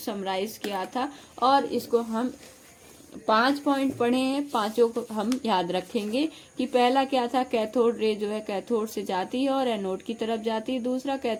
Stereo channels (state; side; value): identical; both; correlation 1.00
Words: समराइज किया था और इसको हम 5 पॉइंट पढ़े हैं, पांचों को हम याद रखेंगे कि पहला क्या था, कैथोड रे जो है कैथोड से जाती है और एनोड की तरफ जाती है। दूसरा,